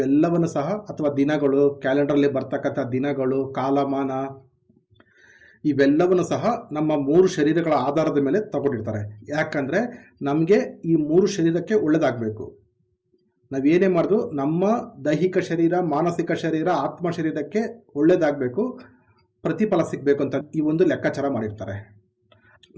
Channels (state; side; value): identical; both; correlation 1.00